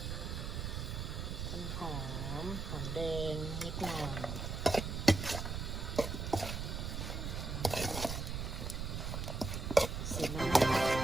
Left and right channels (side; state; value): right; noise; rumble, 3 dB below the sound